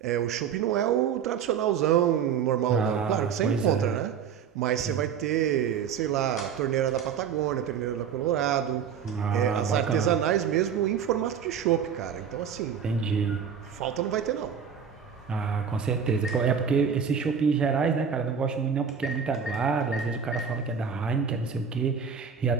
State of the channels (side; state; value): left; quieter; 7.3 dB